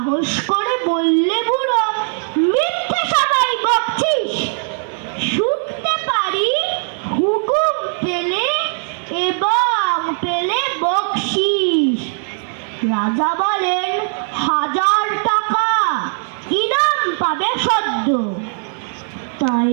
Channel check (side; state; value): left; silent; 57 dB below the other